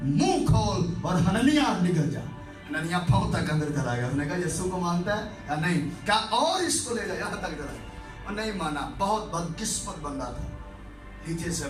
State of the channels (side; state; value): both; identical; correlation 1.00